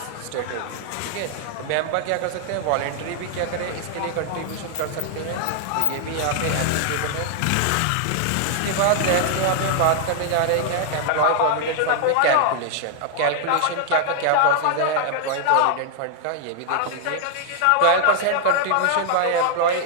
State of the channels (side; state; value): both; different; correlation -0.01